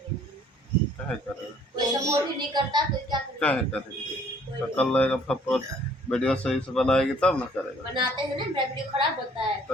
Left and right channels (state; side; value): normal; both; correlation 0.58